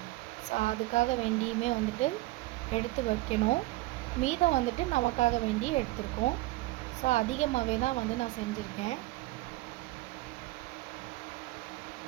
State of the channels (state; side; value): quieter; left; 19.1 dB